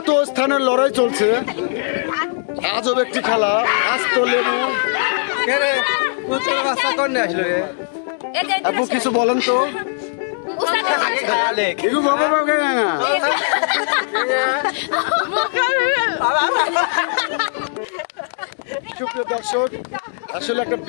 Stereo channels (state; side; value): silent; right; digital silence